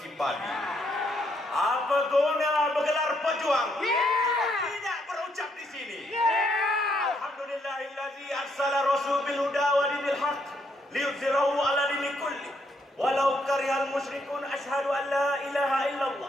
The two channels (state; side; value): normal; both; correlation 0.74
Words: padi? Apa guna bergelar pejuang jika tidak berucap di sini? Alhamdulillahillazi arsala rasul bil huda wa dinil haq liyuzhirahu ala dini kulli walau karihal musyrikun. Asyhadu an la ilaha